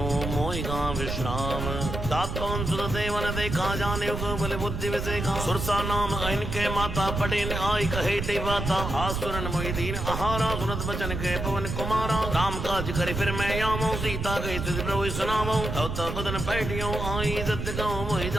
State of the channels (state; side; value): noise; right; rumble, 4 dB below the sound